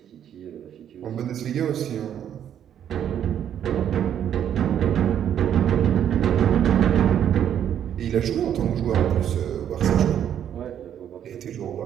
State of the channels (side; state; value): left; quieter; 9.7 dB